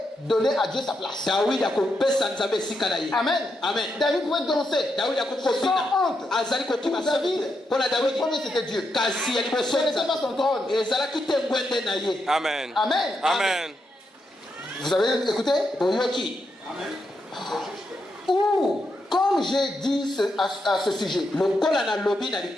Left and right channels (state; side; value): normal; both; correlation 0.83